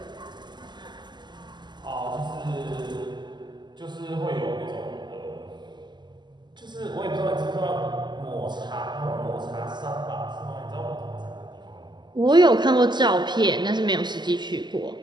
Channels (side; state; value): left; late; 0.21 ms